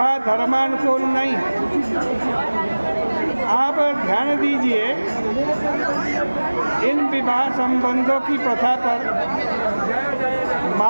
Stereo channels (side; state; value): both; inverted; correlation -1.00